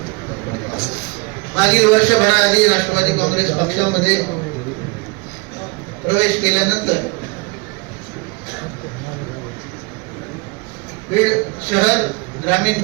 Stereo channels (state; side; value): quieter; left; 27.4 dB